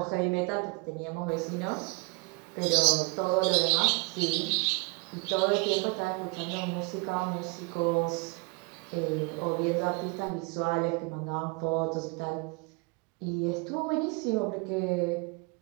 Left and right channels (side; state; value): left; quieter; 29.3 dB